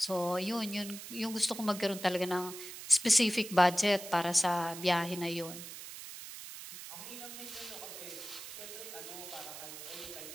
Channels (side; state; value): right; noise; hiss, 11 dB below the sound